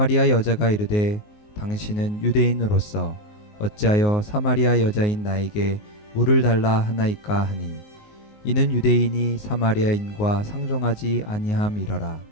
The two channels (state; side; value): late; right; 19 ms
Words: 여자가 이르되 당신은 유대인으로서 어찌하여 사마리아 여자인 나에게 물을 달라 하나이까 하니 이는 유대인이 사마리아인과 상종하지 아니함이러라.